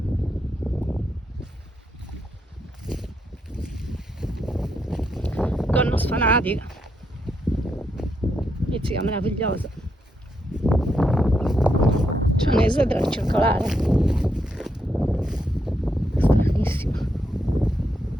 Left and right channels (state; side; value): normal; both; correlation 0.80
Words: Conno sfanatica, pizzica meravigliosa. C'è un'esedra circolare, stranissima.